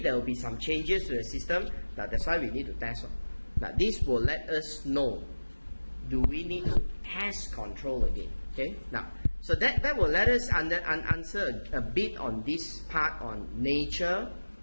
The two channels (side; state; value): both; inverted; correlation -1.00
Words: will be some changes to the system. Now that's why we need to test. Now this will let us know, do we need to test control again? Okay. Now, so that will let us answer a bit on this part on nature,